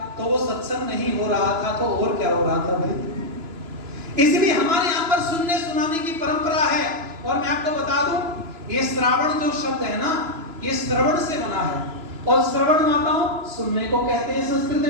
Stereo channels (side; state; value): left; late; 3.0 ms